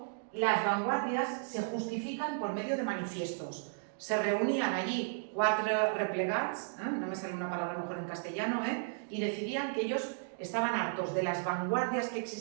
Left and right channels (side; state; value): left; silent; digital silence